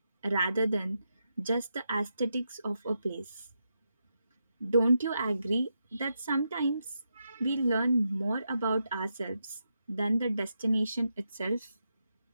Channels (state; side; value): inverted; both; correlation -0.84